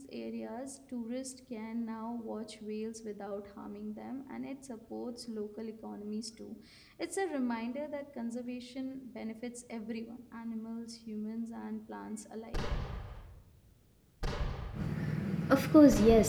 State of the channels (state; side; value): identical; both; correlation 1.00